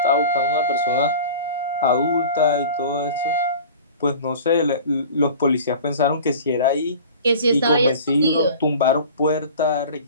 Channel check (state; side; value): inverted; both; correlation -0.40